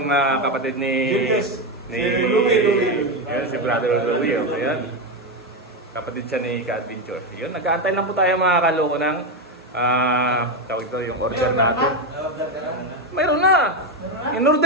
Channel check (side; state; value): both; normal; correlation 0.10